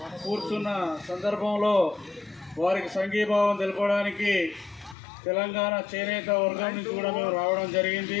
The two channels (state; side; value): drops out; right; at 5.0 s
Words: కూర్చున్న సందర్భంలో వారికి సంఘీభావం తెలపడానికి తెలంగాణ చేనేత వర్గం నుంచి కూడా మేము రావడం జరిగింది.